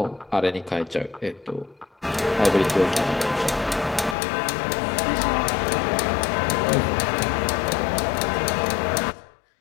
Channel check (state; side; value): drops out; right; at 4.2 s